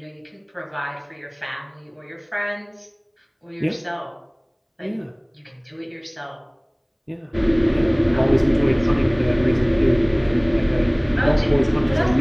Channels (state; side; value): identical; both; correlation 1.00